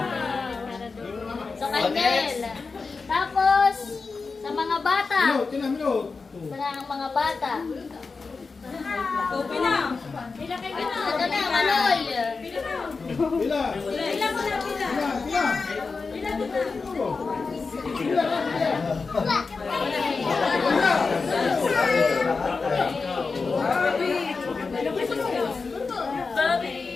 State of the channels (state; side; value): quieter; right; 4.4 dB